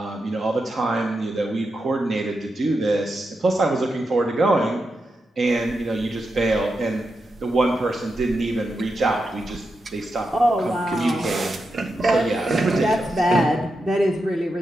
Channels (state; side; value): normal; both; correlation 0.87